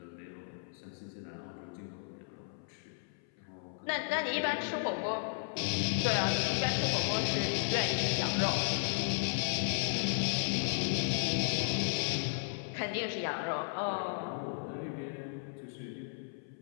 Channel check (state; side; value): silent; right; 55 dB below the other